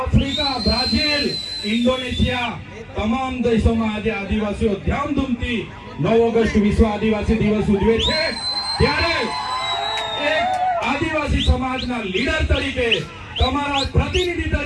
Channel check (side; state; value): both; identical; correlation 1.00